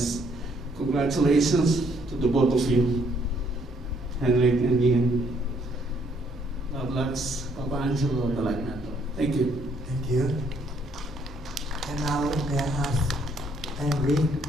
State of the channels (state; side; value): normal; both; correlation 0.67